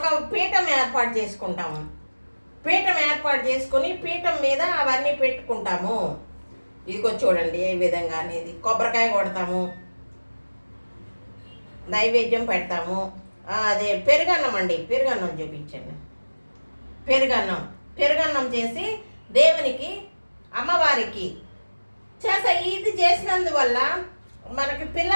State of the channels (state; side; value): inverted; both; correlation -1.00